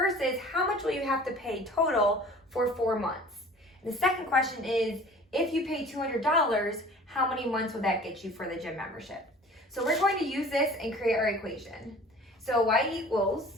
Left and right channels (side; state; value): both; normal; correlation 0.45